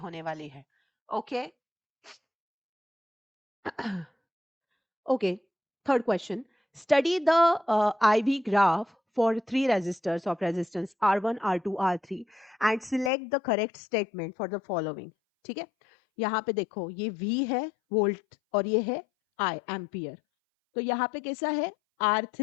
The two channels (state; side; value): drops out; right; at 13.1 s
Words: वाली है. Okay. Okay, third question. Study the IV graph for three resistors of resistance R1, R2, R3 and select the correct statement for the following. ठीक है. यहाँ पे देखो ये V है वोल्ट और ये है I एम्पियर. तो यहाँ पे कैसा है?